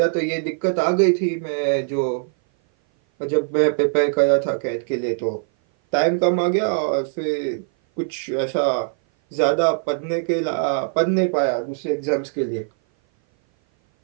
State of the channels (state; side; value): silent; left; 57 dB below the other